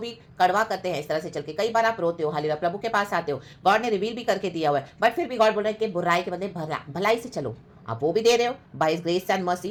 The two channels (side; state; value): both; identical; correlation 1.00